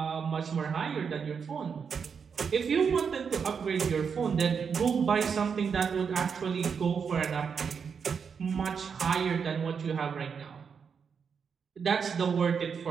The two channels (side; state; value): left; quieter; 6.3 dB